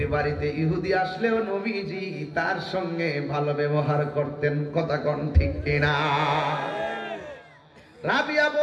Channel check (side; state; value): both; identical; correlation 1.00